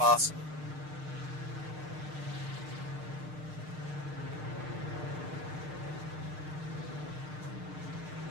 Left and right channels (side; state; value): left; late; 6.6 ms